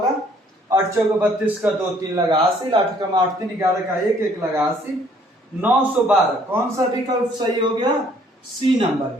8 चौके 32 का 2 3 लगा 80, 8 कम 8 3 11 का 1 1 लगा 80, 912। कौन सा विकल्प सही हो गया, सी नंबर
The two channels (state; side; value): normal; both; correlation 0.61